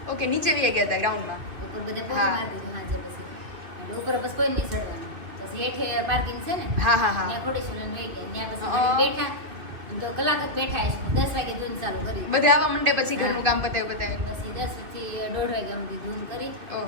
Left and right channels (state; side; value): late; left; 2.9 ms